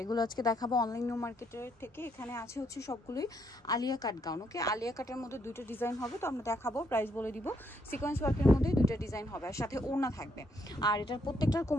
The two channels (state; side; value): normal; both; correlation 0.73